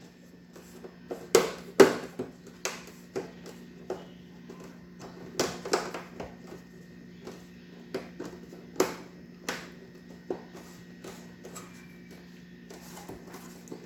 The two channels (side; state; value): both; identical; correlation 1.00